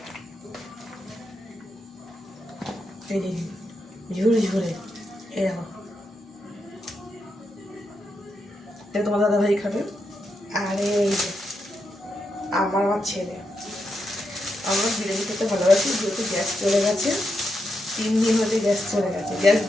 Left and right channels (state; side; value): normal; both; correlation 0.84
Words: এই ঝুরে ঝুরে, এই দেখো এটা তোমার দাদা ভাই খাবে। আর এই যে আমার ছেলে, আমরা বিরিয়ানি খেতে ভালোবাসি, যেহেতু গ্যাস চলে গেছে 3 দিন হতে গ্যাস চলে গেছে, গ্যাস